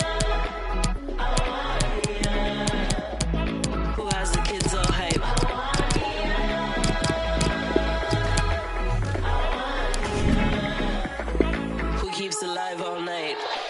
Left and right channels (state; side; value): identical; both; correlation 1.00